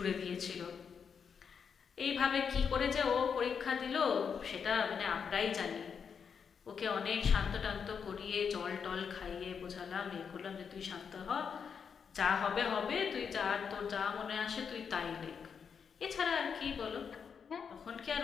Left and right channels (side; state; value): right; quieter; 6.6 dB